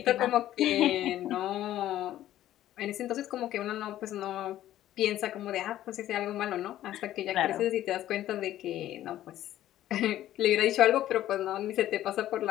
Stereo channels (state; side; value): quieter; right; 13.1 dB